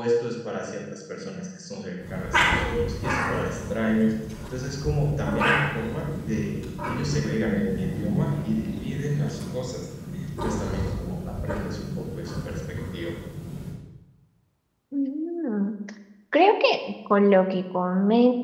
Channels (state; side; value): identical; both; correlation 1.00